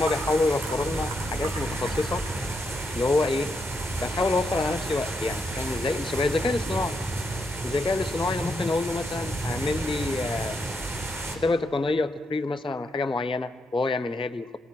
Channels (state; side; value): normal; both; correlation 0.81